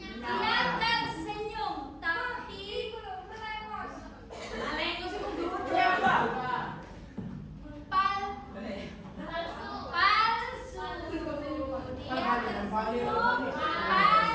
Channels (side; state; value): both; identical; correlation 1.00